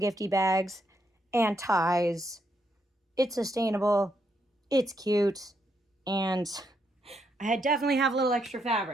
bags and ties. It's sustainable, it's cute, and I definitely have a little extra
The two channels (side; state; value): both; normal; correlation 0.78